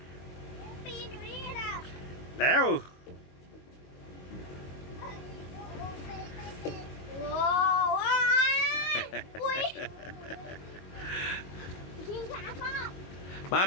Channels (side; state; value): right; late; 22 ms